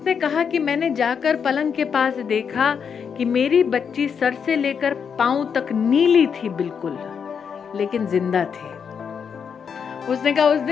कहा कि मैंने जाकर पलंग के पास देखा कि मेरी बच्ची सर से लेकर पांव तक नीली थी बिल्कुल, लेकिन जिंदा थी। उसने कहा उस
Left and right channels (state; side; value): quieter; right; 6.8 dB